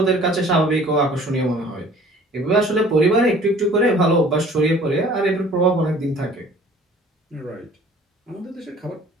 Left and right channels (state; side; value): normal; both; correlation 0.51